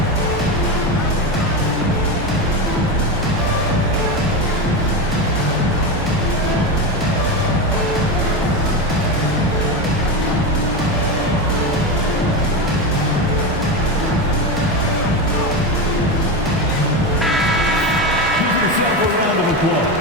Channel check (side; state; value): both; normal; correlation 0.17